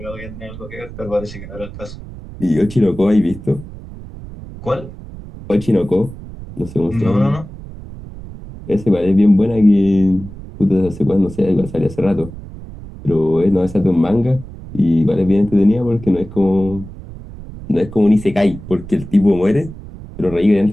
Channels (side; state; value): right; noise; rumble, 14 dB below the sound